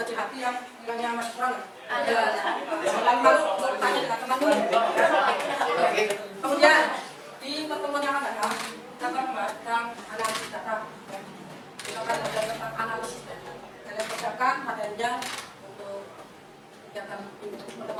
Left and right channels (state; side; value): identical; both; correlation 1.00